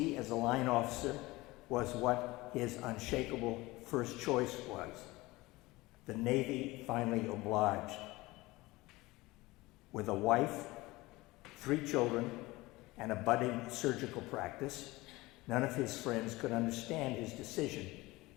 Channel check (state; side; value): quieter; right; 20.5 dB